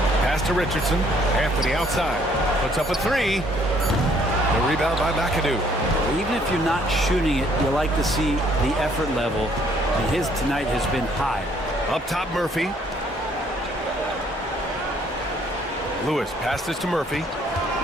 Pass to Richardson. Anthony outside. Puts up a 3. The rebound by McAdoo. Even if you're not shooting it, you like to see the effort level. And his tonight has been high. Up top, Murphy. Lewis passes to Murphy.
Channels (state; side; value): normal; both; correlation 0.64